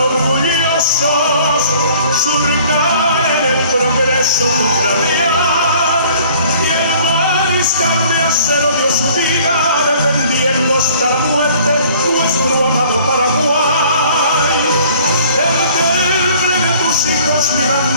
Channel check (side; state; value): both; inverted; correlation -0.53